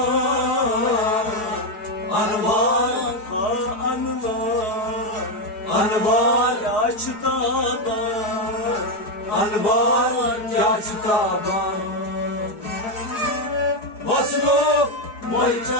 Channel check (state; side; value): late; right; 4.8 ms